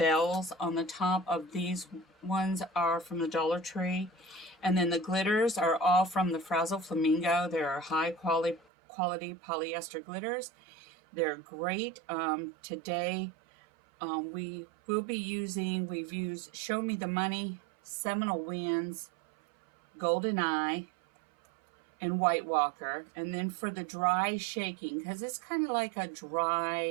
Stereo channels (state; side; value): drops out; left; at 8.6 s